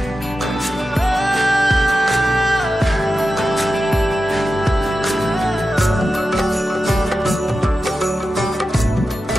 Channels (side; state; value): both; normal; correlation 0.92